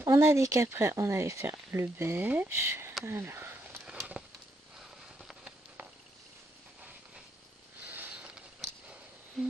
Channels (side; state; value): both; normal; correlation 0.77